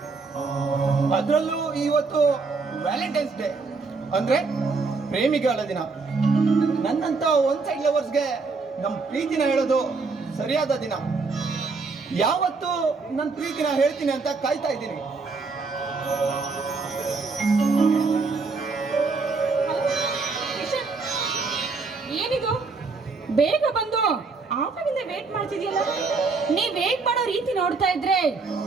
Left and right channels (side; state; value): left; quieter; 4.2 dB